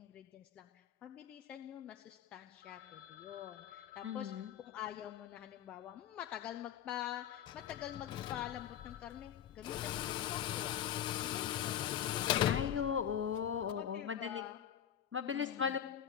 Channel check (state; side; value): quieter; right; 9.8 dB